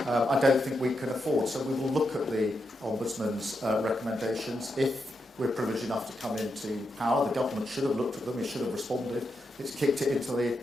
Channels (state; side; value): normal; both; correlation 0.84